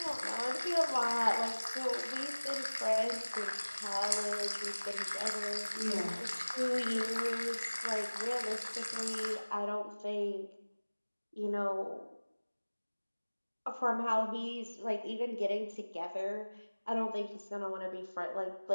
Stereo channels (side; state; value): both; inverted; correlation -1.00